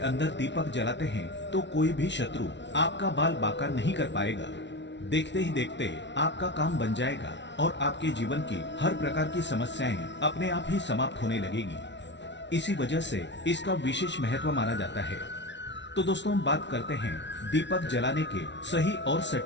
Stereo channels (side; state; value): right; late; 0.51 ms